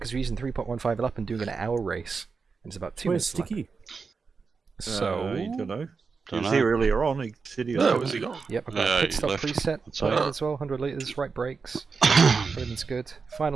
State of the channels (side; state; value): left; quieter; 5.0 dB